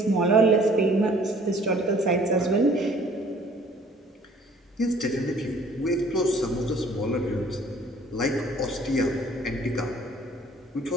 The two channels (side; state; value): both; normal; correlation 0.55